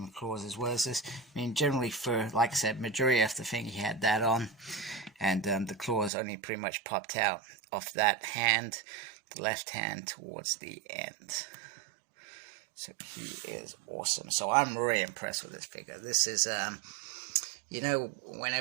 claws as well as this. I mean, generally for, like I said, majority of the thing he had that on, and the claws only pretty much popped out off that hand, the left hand towards the end. So he is awesome. So I'm really impressed with this figure. This is you know,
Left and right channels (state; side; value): drops out; left; at 6.1 s